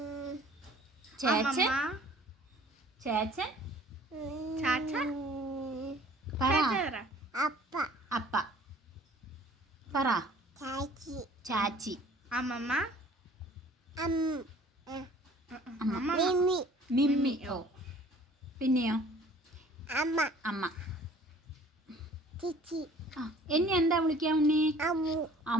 ചേച്ചൻ, ചേച്ചൻ, പറ. അപ്പ പറ. ചാച്ചി, അമ്മമ്മ, മിമ്മി. ഓ പിന്നെയോ? അമ്മ. എന്നെ എന്താ വിളിക്കാ ഉണ്ണി?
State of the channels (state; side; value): normal; both; correlation 0.52